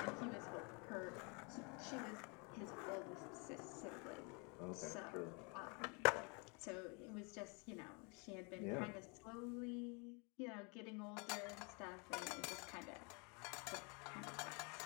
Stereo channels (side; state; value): right; quieter; 32.8 dB